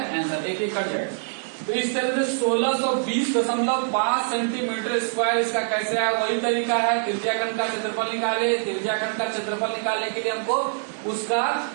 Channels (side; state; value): left; silent; digital silence